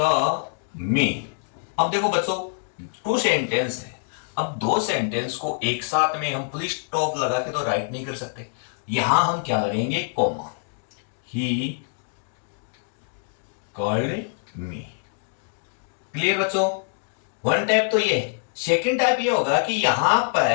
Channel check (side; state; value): right; silent; digital silence